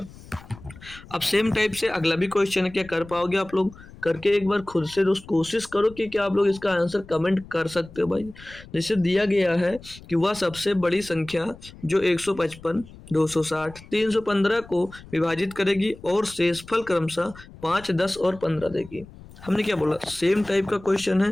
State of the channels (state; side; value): noise; left; rumble, 19 dB below the sound